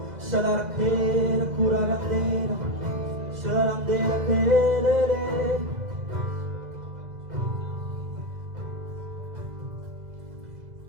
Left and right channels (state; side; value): late; left; 2.0 ms